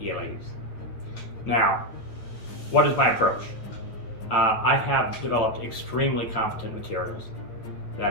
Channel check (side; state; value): right; late; 8.9 ms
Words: Now, what is my approach? I have developed extremely competent materials